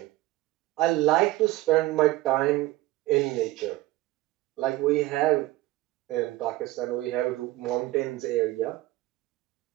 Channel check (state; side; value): quieter; left; 17.8 dB